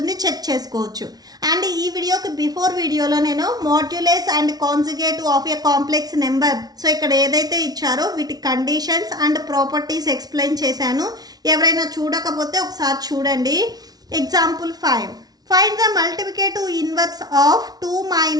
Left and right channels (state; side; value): late; left; 0.19 ms